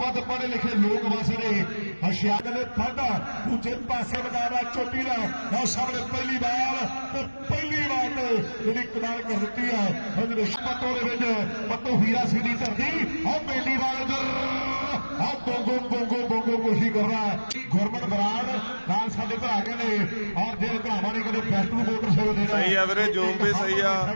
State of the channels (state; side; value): inverted; both; correlation -1.00